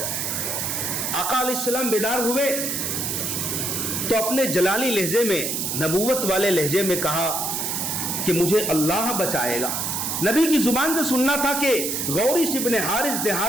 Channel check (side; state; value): right; noise; hiss, 1 dB below the sound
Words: آقا علیہ السلام بیدار ہوئے تو اپنے جلالی لہجے میں، نبوت والے لہجے میں کہا کہ مجھے اللہ بچائے گا۔ نبی کی زبان سے سننا تھا کہ غورث ابن حارث